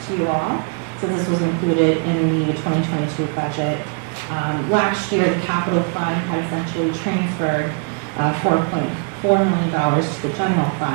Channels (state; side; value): quieter; left; 36.8 dB